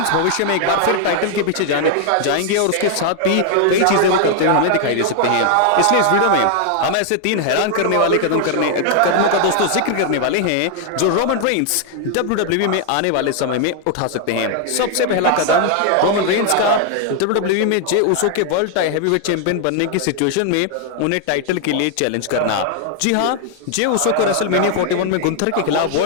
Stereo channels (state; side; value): different; both; correlation 0.00